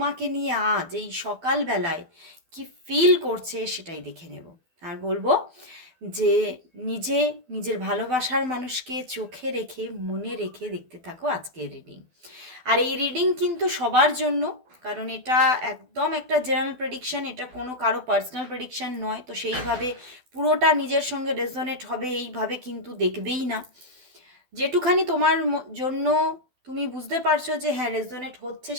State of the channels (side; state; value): left; late; 12 ms